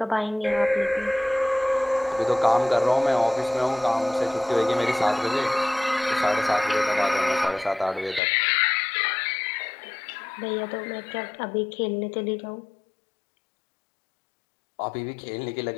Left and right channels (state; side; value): drops out; right; at 8.2 s